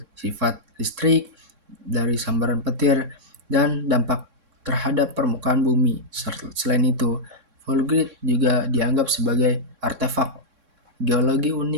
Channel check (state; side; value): late; left; 3.6 ms